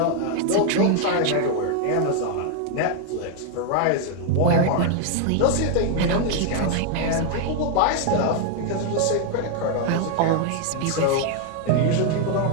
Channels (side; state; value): both; different; correlation 0.00